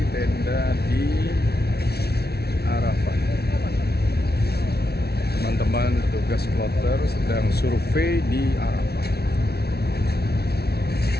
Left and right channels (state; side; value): late; right; 0.46 ms